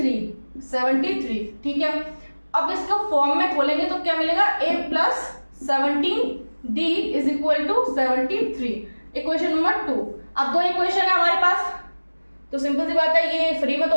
73। ठीक है, अब इसको फॉर्म में खोलेंगे तो क्या मिलेगा, A + 17D is equal to 73, equation number 2। अब 2 इक्वेशन है हमारे पास, तो सिंपल सी बात है, ये फ्री में तो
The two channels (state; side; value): inverted; both; correlation -1.00